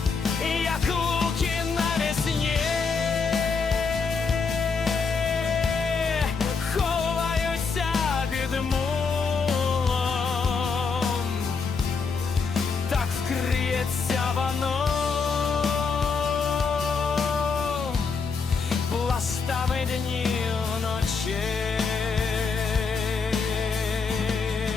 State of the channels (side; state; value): right; quieter; 5.0 dB